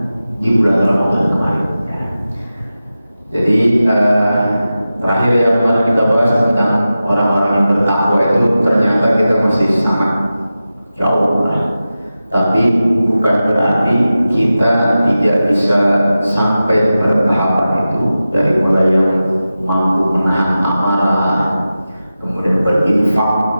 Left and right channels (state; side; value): inverted; both; correlation -0.94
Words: di bulan Ramadan kemarin. Jadi terakhir yang kemarin kita bahas tentang orang-orang yang bertakwa itu, ternyata kita masih sangat jauh lah. Tapi bukan berarti kita tidak bisa sampai bertahapan itu, dari mulai yang mampu menahan amarah, kemudian berinfak